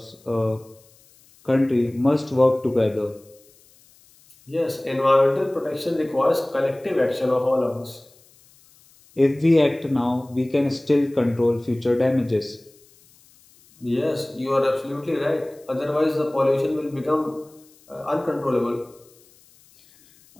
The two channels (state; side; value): noise; left; hiss, 29 dB below the sound